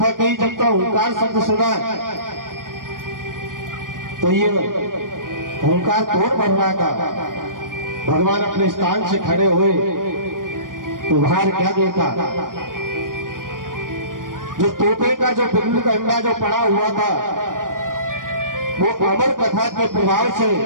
कही, जब तक ओंकार शब्द सुना, तो ये ओंकार कौन बन रहा था? भगवान अपने स्थान से खड़े हुए तो बाहर क्या देखा? जो तोते का जो बिल्लू का अंडा जो पड़ा हुआ था, वो अमर कथा के प्रभाव से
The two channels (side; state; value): left; late; 0.90 ms